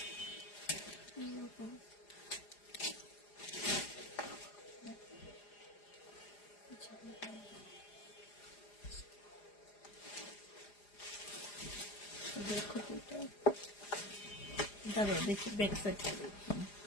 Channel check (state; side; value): late; right; 4.9 ms